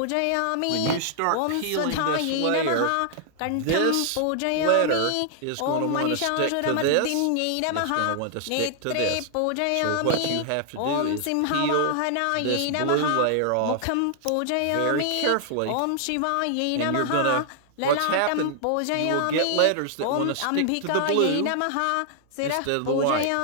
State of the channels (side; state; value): both; different; correlation 0.00